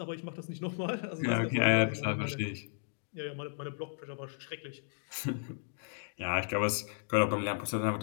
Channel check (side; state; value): right; silent; digital silence